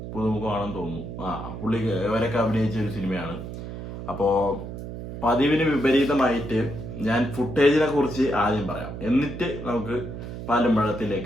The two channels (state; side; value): noise; right; hum, 9 dB below the sound